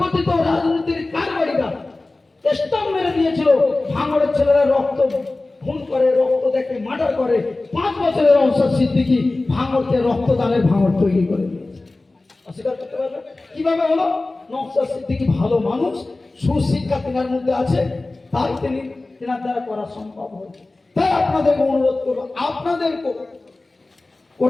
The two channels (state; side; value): quieter; right; 3.1 dB